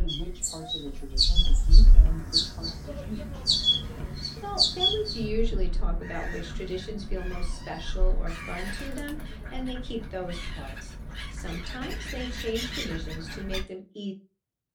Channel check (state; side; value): identical; both; correlation 1.00